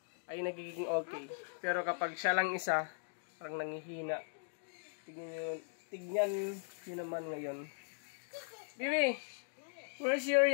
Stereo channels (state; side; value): silent; right; digital silence